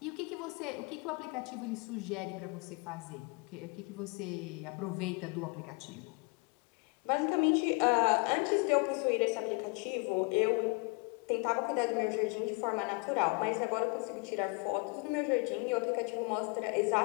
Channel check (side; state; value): right; quieter; 30.6 dB